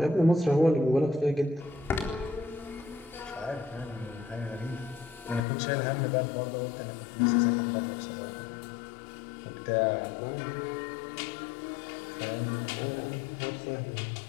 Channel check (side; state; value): right; drops out; at 5.4 s